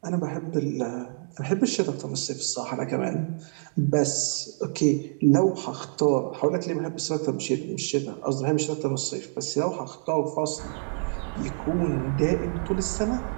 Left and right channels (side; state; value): left; silent; 60 dB below the other